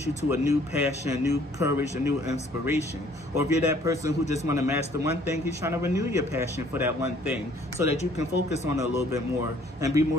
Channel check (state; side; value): normal; both; correlation 0.59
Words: you to a new passion, new courage, a new inspiration. Or if you're that person who just want to master one thing, he's trying to renew your passion for that one thing so that you can focus on it a little bit more and be